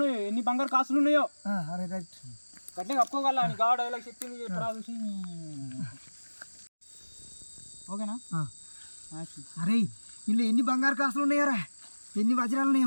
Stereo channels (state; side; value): inverted; both; correlation -1.00